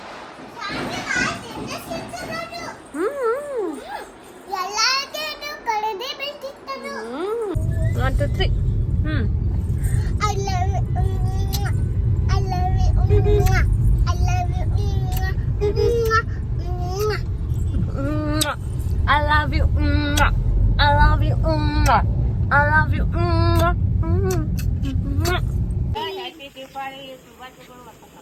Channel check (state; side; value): identical; both; correlation 1.00